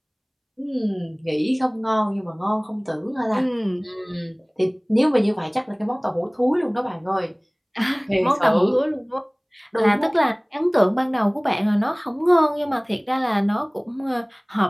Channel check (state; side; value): identical; both; correlation 1.00